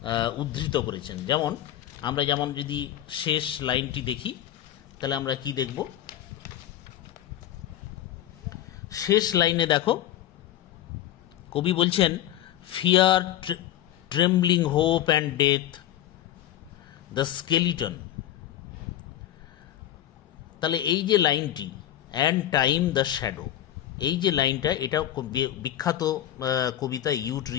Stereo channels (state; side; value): quieter; right; 12.2 dB